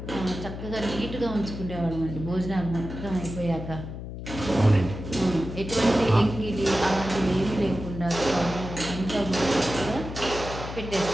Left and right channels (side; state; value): left; noise; hum, 9 dB below the sound